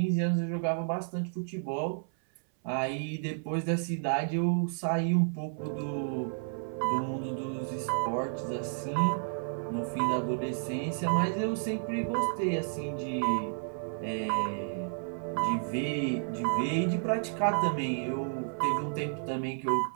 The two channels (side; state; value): left; silent; 57 dB below the other